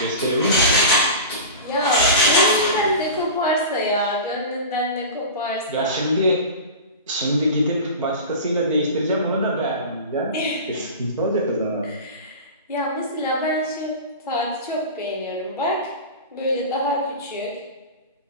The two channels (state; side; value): inverted; both; correlation -0.31